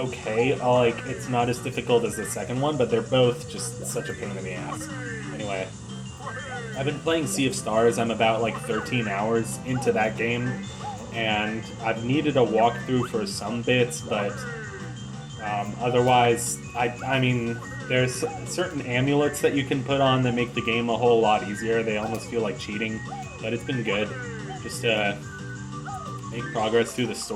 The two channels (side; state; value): both; identical; correlation 1.00